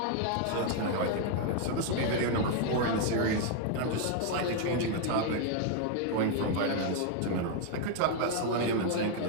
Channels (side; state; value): both; different; correlation 0.00